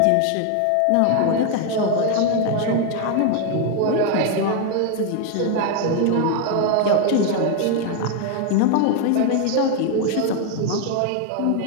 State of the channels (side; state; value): both; different; correlation 0.01